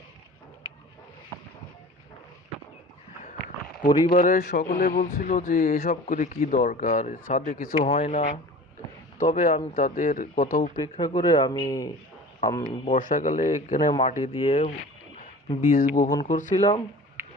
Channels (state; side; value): normal; both; correlation 0.40